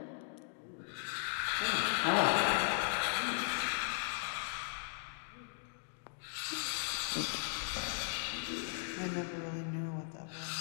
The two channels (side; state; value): right; silent; digital silence